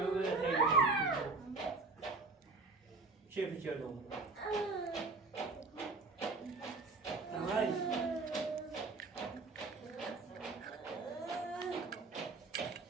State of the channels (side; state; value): left; quieter; 3.8 dB